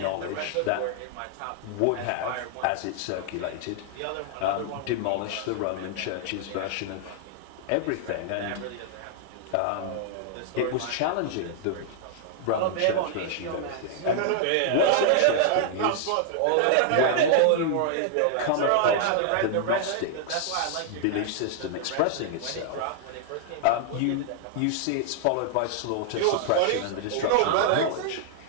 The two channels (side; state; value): both; different; correlation -0.01